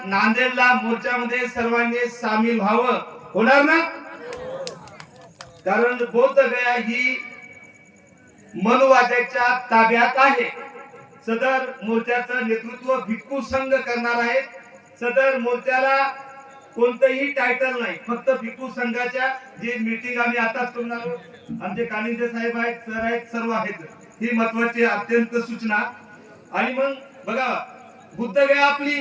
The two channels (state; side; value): identical; both; correlation 1.00